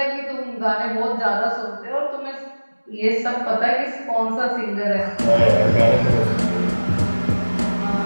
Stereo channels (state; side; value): inverted; both; correlation -1.00